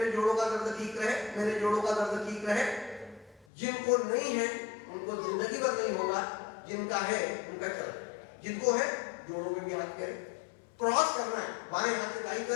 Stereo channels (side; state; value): right; drops out; at 3.5 s